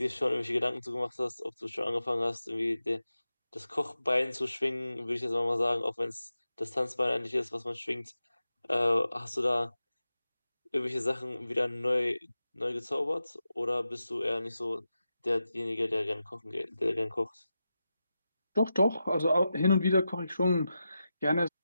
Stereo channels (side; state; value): both; inverted; correlation -0.91